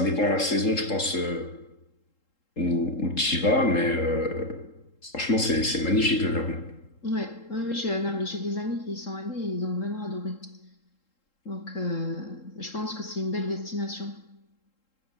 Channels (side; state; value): right; late; 3.7 ms